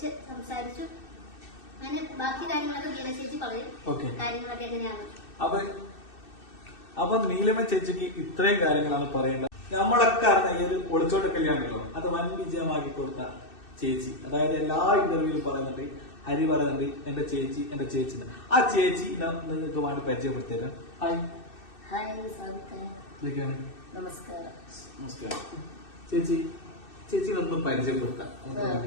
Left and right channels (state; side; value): late; right; 2.6 ms